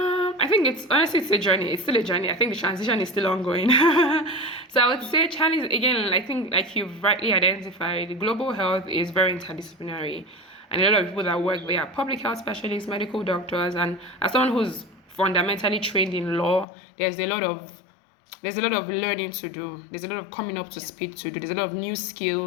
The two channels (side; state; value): right; drops out; at 16.7 s